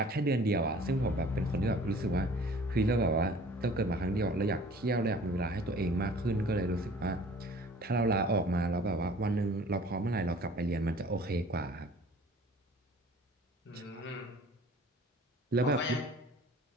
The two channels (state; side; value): normal; both; correlation 0.49